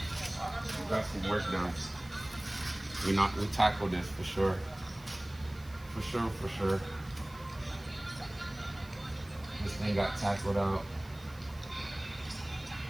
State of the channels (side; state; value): right; noise; hiss, 23 dB below the sound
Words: We got some work done. We tackled this for sure. For sure. This thing got tackled out.